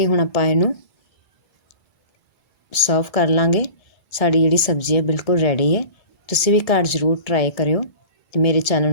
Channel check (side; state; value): right; late; 2.3 ms